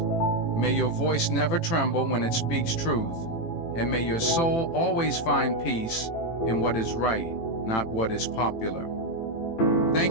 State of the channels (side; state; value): right; late; 18 ms